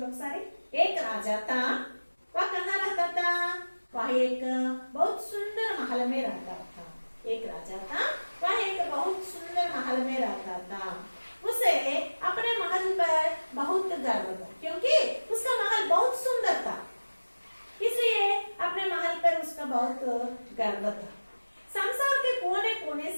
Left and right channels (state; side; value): inverted; both; correlation -1.00